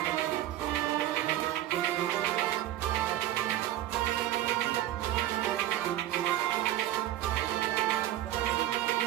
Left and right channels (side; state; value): left; quieter; 13.7 dB